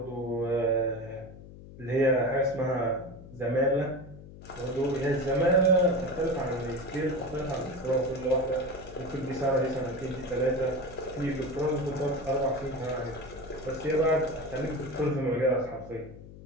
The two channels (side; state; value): left; noise; hum, 16 dB below the sound